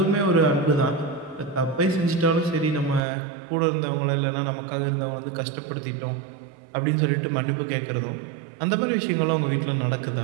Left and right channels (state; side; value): drops out; left; at 3.0 s